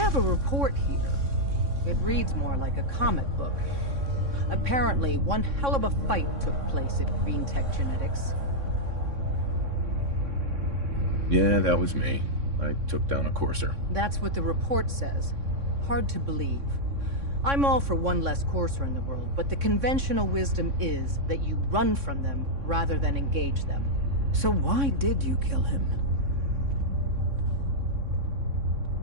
It reads more like a comic book. Apparently, one hell of a fight took place at Green Tech Genetics. Yeah, that was me. I took down a courser. That's what the report says. Hard to believe. I'm all for one less courser in the world, but the conventional wisdom is that you run from them rather than engage them. So why did you kill him?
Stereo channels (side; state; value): left; late; 3.6 ms